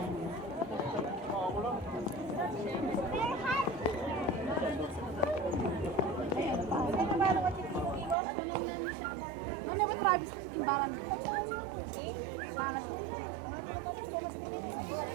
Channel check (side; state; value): left; drops out; at 8.2 s